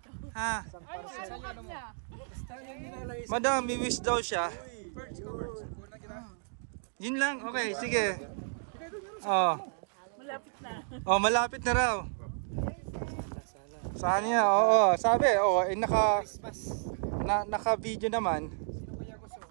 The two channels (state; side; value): silent; left; digital silence